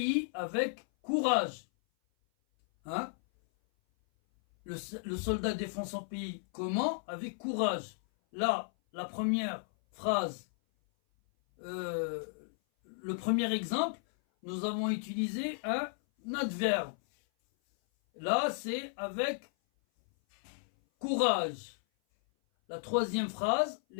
avec courage. Hein? Le soldat défend son pays comment? Avec courage. Là, la première phrase, le premier exemple, nous avons utilisé un adverbe. Là, c'est avec courage. La troisième phrase,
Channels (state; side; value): silent; right; 55 dB below the other